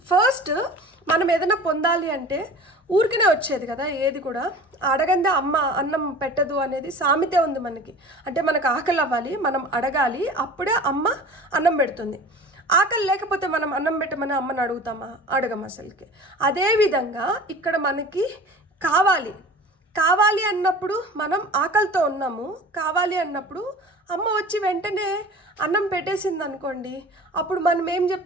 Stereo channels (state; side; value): normal; both; correlation 0.40